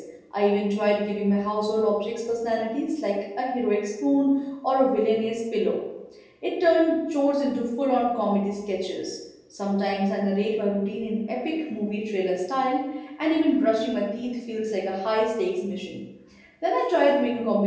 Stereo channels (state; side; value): identical; both; correlation 1.00